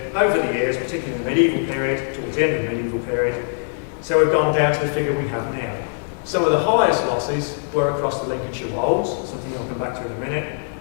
over the years, particularly in the medieval period, towards the end of the medieval period. So we've gone down to the figure we have now. Some of the highest losses were across the Lincolnshire Wolds, something I'll come back to in a minute,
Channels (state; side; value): silent; right; digital silence